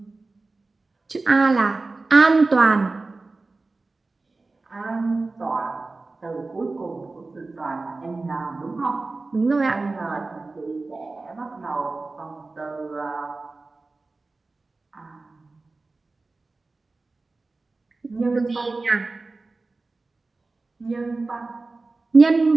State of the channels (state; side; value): quieter; left; 3.5 dB